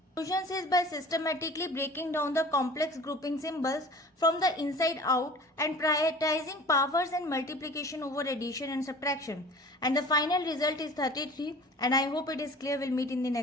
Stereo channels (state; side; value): normal; both; correlation 0.43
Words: Solution is by systematically breaking down the complex grouping symbols from the inside out and prioritizing powers and multiplication over addition and subtraction. And the final result is 33. And I hope it is clear. We'll meet in the